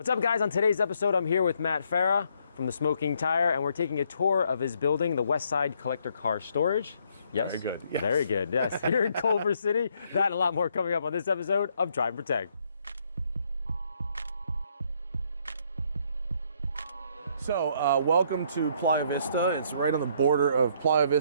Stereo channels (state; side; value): inverted; both; correlation -0.70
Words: up, guys? On today's episode, I'm here with Farah from the Smoking Tire, and we're taking a tour of his building, the Westside Collector Car Storage. Yes? Very good. Yes. Very good, yes. Here in Culver City. That and a lot more coming up on this episode of Drive and Protect. So, welcome to Playa Vista. It's right on the border of Playa